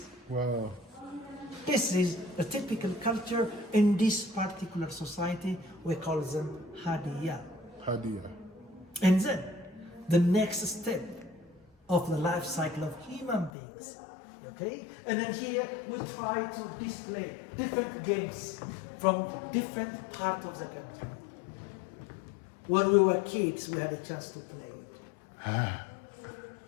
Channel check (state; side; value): drops out; right; at 13.5 s